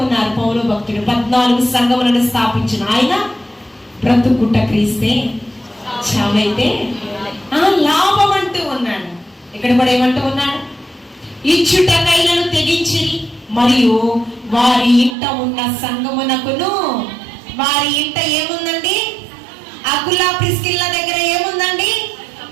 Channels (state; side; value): drops out; left; at 15.2 s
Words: ఉన్నారు పౌలు భక్తుడు. 14 సంఘములను స్థాపించిన ఆయన బ్రతుకుట క్రీస్తే చావైతే లాభం అంటూ ఉన్నాడు. ఇక్కడ కూడా ఏమంటూ ఉన్నాడు? ఇచ్చుటకైనను తెగించిరి మరియు వారి ఇంట ఉన్న సంఘమునకును. వారి ఇంట ఏముందండి? అకుల ప్రిస్కిల్ల దగ్గర ఏముందండి?